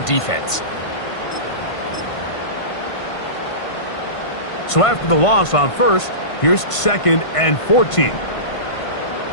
defense. So after the loss on first, here's 2nd and 14.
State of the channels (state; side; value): late; right; 1.5 ms